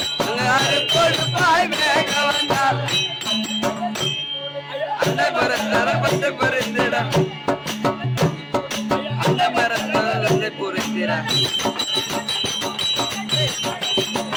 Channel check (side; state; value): both; identical; correlation 1.00